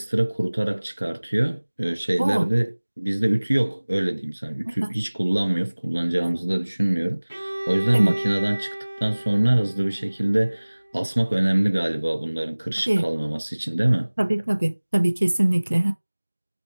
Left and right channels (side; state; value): both; inverted; correlation -1.00